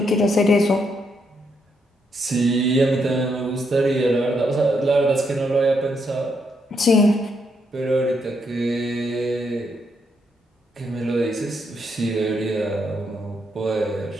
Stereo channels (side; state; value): both; normal; correlation 0.77